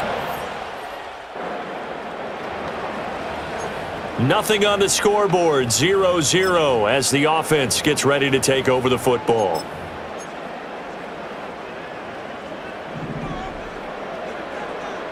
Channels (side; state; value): both; identical; correlation 1.00